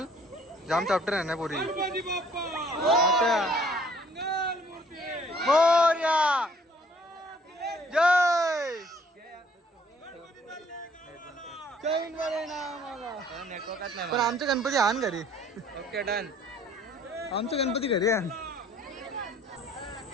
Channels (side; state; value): both; normal; correlation 0.59